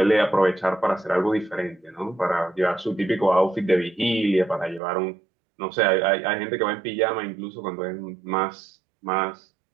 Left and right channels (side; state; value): left; drops out; at 4.8 s